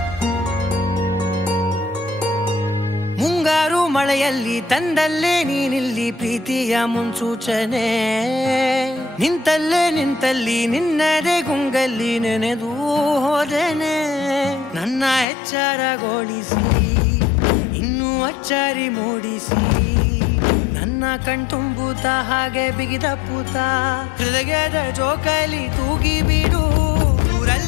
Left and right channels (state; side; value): drops out; right; at 15.2 s